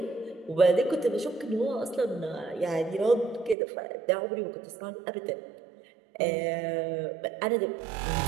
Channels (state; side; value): drops out; left; at 3.6 s